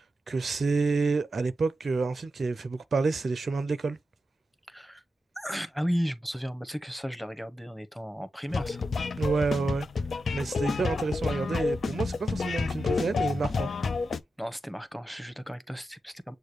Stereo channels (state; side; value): normal; both; correlation 0.89